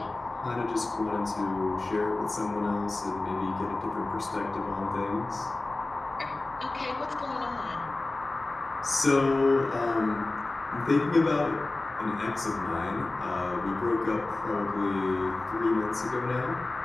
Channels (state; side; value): quieter; right; 3.0 dB